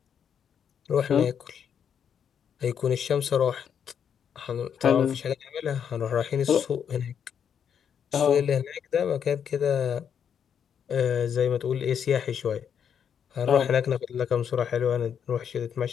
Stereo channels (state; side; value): quieter; right; 8.0 dB